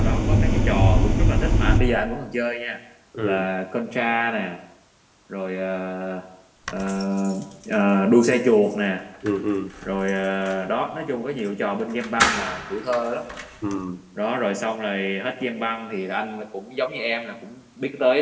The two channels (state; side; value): identical; both; correlation 1.00